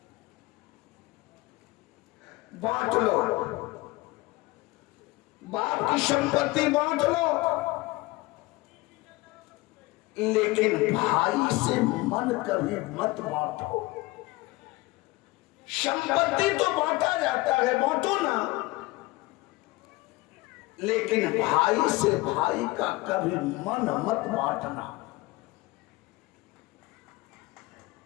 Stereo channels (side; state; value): right; quieter; 21.2 dB